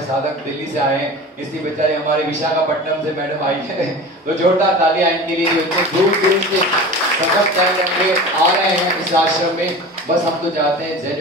साधक दिल्ली से आए हैं, इसलिए बेचारे हमारे विशाखापट्टनम से मैडम आई है। तो जोरदार तालियां इनके लिए जो इतने दूर से सफर तय करके आ रहे हैं इस आश्रम में। बस हम तो चाहते हैं जैन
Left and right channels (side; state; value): both; normal; correlation 0.34